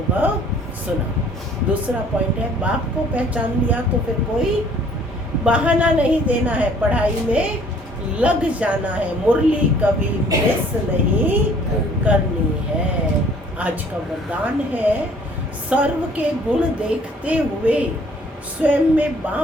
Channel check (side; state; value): both; normal; correlation 0.56